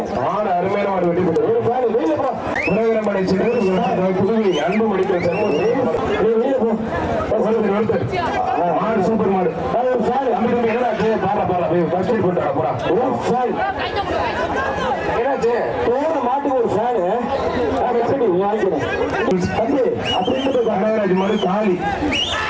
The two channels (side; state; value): both; identical; correlation 1.00